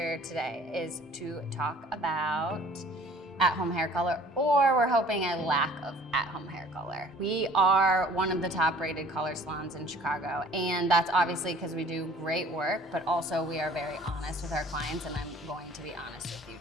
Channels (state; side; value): normal; both; correlation 0.52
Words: today is to talk about at-home hair color, or we're hoping a lack of at-home hair color. We are one of the top rated color salons in Chicago, and that's obviously because we do great work, but also we are very honest with our clients, and I'm going to be honest with you